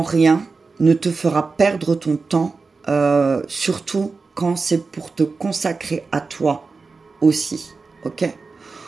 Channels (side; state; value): left; quieter; 4.3 dB